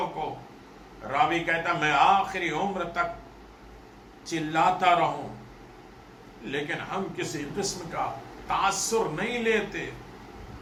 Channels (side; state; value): both; identical; correlation 1.00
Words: کو. راوی کہتا میں آخری عمر تک چلاتا رہوں لیکن ہم کسی قسم کا تاثر نہیں لیتے.